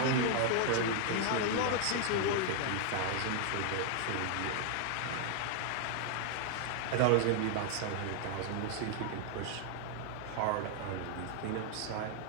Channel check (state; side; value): different; both; correlation 0.00